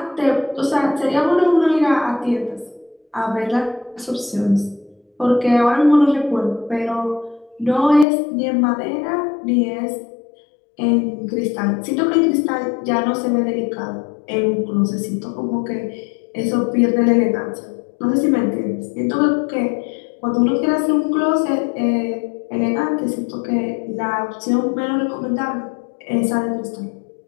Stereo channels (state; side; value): drops out; right; at 8.1 s